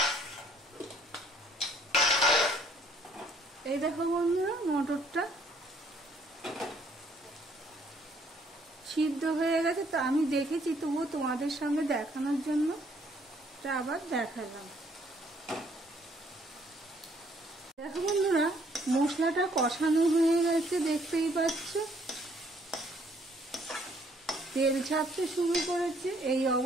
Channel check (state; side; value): normal; both; correlation 0.64